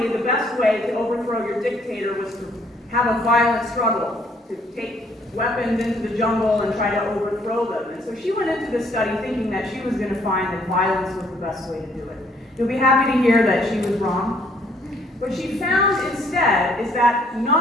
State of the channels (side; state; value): both; normal; correlation 0.64